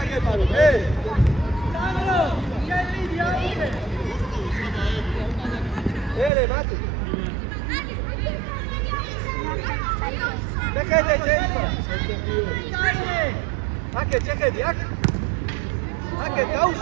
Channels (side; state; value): left; drops out; at 6.3 s